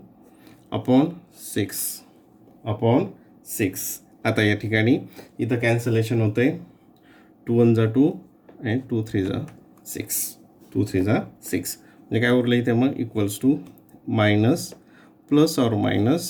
अपॉन 6. आता या ठिकाणी इथं कॅन्सलेशन होतं आहे, 2 1 2 अँड 2 3 6, म्हणजे काय उरलं इथे मग equals to minus plus or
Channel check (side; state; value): both; identical; correlation 1.00